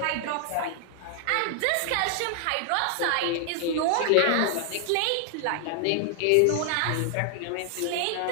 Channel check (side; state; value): both; different; correlation 0.00